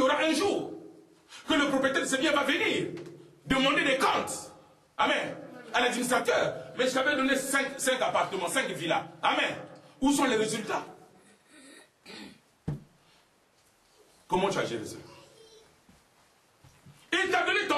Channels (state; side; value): identical; both; correlation 1.00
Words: aura un jour que le propriétaire de ces biens va venir demander des comptes, amen, à l'administrateur. Mais je t'avais donné 5 appartements, 5 villas, amen. Où sont les résultats? Comment tu as géré ça? Il t'a donné